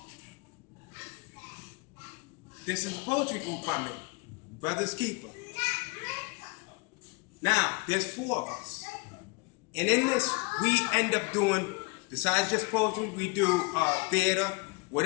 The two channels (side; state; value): right; quieter; 28.4 dB